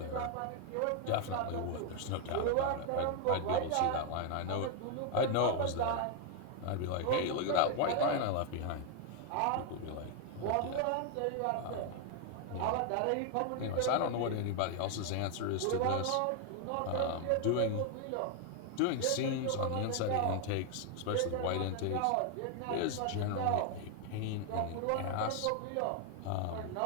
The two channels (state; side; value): different; both; correlation 0.00